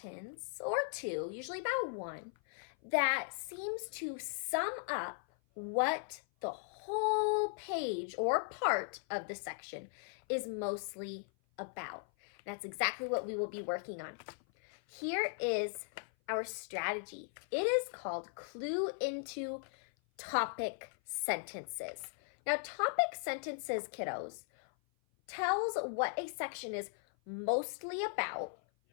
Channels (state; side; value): silent; right; 52 dB below the other